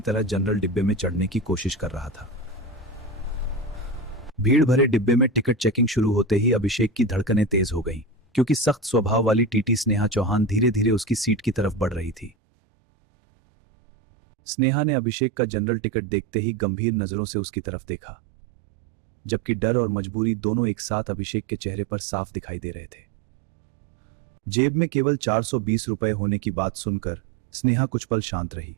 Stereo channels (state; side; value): drops out; left; at 12.4 s